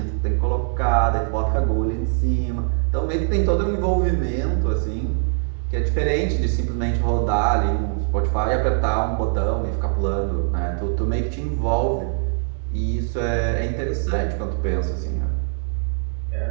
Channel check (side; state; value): left; silent; 64 dB below the other